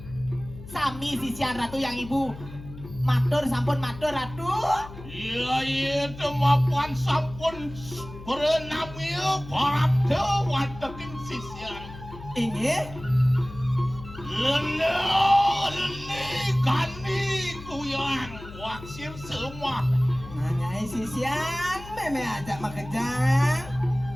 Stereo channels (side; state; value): left; noise; hum, 14 dB below the sound